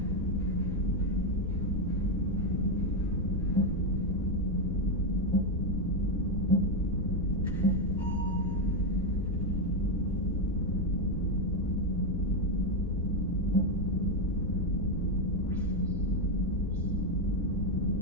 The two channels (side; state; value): both; normal; correlation 0.06